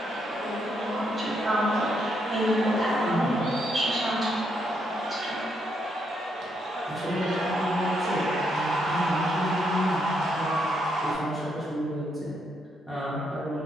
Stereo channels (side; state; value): both; normal; correlation 0.77